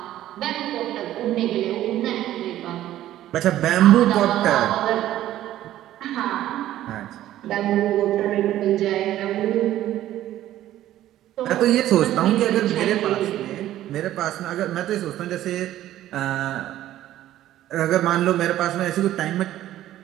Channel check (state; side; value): quieter; left; 13.4 dB